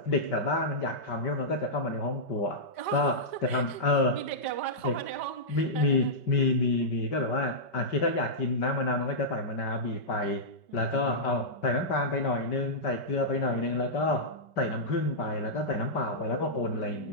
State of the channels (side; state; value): right; late; 5.2 ms